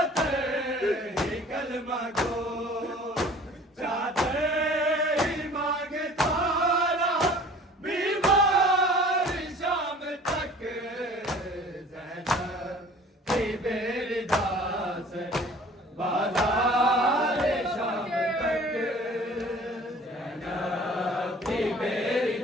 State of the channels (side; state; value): both; normal; correlation 0.48